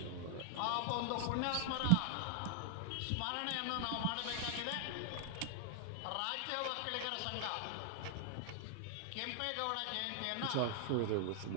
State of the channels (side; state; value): both; different; correlation 0.00